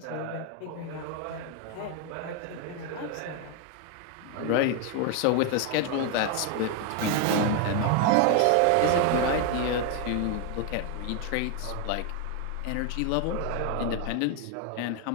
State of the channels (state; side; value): different; both; correlation 0.01